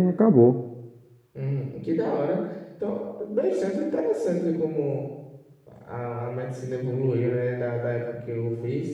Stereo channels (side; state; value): both; identical; correlation 1.00